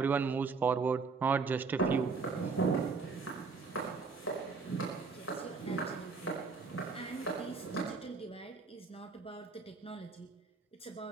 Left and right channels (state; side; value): quieter; left; 4.7 dB